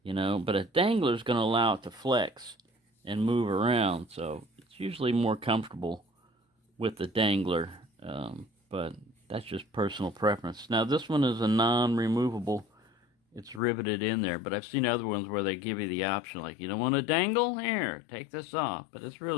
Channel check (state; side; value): drops out; right; at 13.6 s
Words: But a dangler is going to allow it to flex and move around. So it's usually more comfortable with the dangler. But that's just personal preference. Now, this one is a non-removable. It's riveted in there, but I've seen other ones where they give you the option, like, you don't want to dangle? Here, take this off. But it's